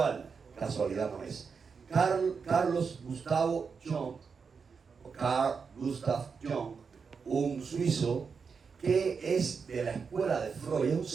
Casualidad no es. Carl Gustav Jung, un suizo que es de la escuela de Freud, es un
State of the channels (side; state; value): left; quieter; 5.6 dB